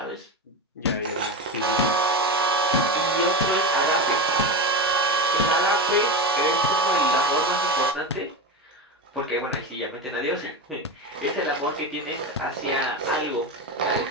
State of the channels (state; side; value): normal; both; correlation 0.19